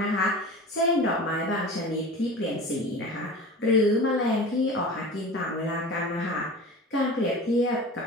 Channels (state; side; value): normal; both; correlation 0.35